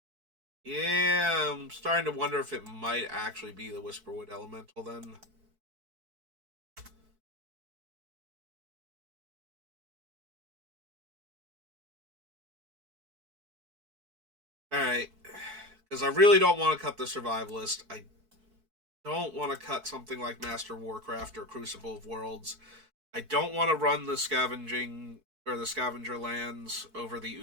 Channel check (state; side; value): late; left; 4.6 ms